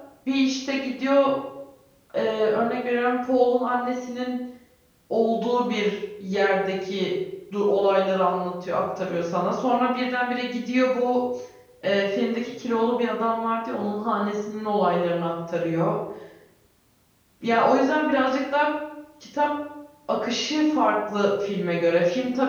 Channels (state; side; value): identical; both; correlation 1.00